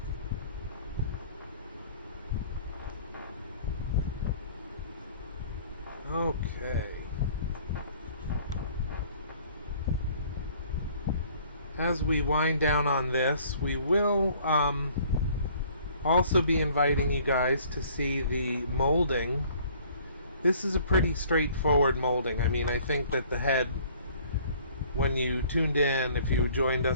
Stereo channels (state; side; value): inverted; both; correlation -0.55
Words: Okay. As we wind down on this, we will also be inviting you guys to see the molding. This is a pretty straightforward molding. I mean, I think that the head, when you tuned in, if you joined